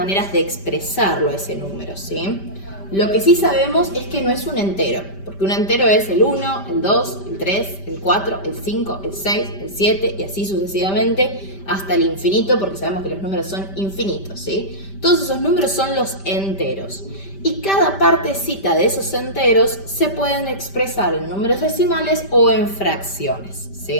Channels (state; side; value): late; right; 5.1 ms